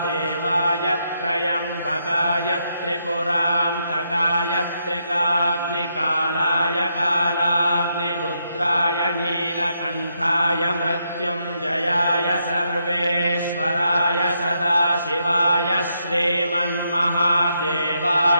त्र्यम्बकाय त्रिपुरान्तकाय त्रिकाग्निकालाय कालाग्निरुद्राय नीलकण्ठाय मृत्युञ्जयाय सर्वेश्वराय सदाशिवाय श्रीमन्महादेवाय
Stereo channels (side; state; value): both; inverted; correlation -0.79